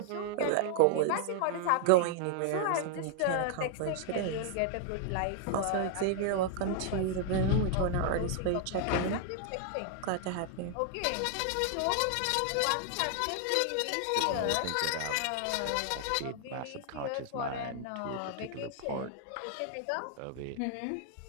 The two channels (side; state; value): both; different; correlation 0.00